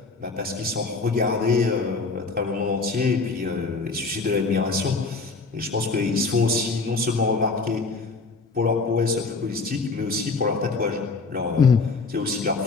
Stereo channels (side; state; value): right; quieter; 4.0 dB